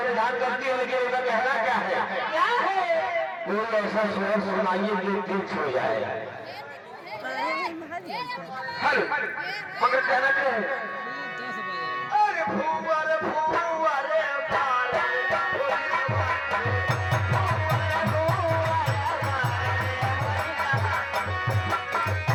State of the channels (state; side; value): identical; both; correlation 1.00